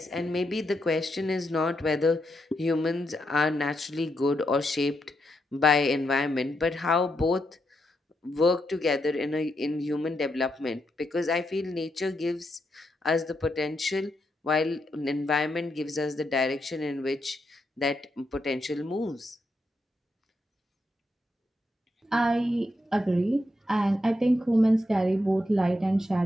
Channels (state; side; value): normal; both; correlation 0.82